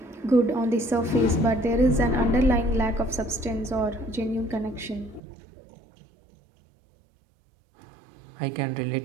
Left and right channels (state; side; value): drops out; left; at 5.2 s